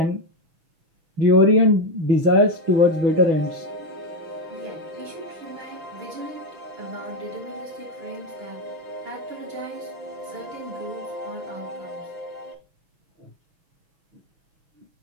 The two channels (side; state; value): left; late; 6.5 ms